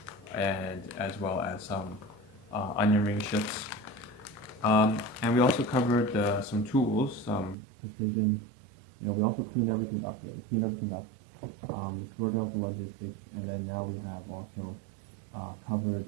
and as well as some onion ring chips. And we also covered some tools, some precision. We also cleaned everything up here. We cleaned everything up. We sorted out the logistics, and then now we have also covered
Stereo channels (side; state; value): left; drops out; at 7.6 s